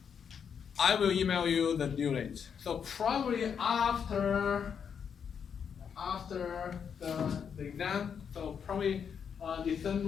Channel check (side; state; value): right; quieter; 7.2 dB